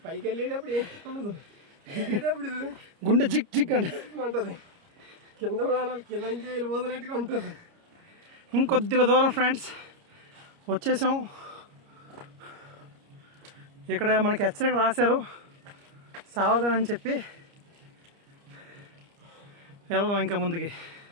పైకి వెళ్ళేటప్పుడు ఏం ఉండదు, దిగేటప్పుడు గుండె జిక్ జిక్ అంటే ఉంటుంది, కింద ప్రాణాలు కింద నుంచి వెళ్ళిపోతున్నట్టుగా ఉంటుంది. ఇంకొద్దిగా దూరం ఫ్రెండ్స్ వచ్చేసాం. ఇక్కడ మనకి హెచ్చరిక రాశారు సావధానం అని చెప్పి. వెళ్దాం ఇంకా ముందుకి.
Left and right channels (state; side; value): late; left; 29 ms